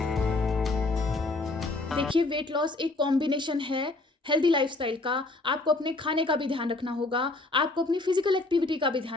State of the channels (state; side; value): quieter; right; 3.1 dB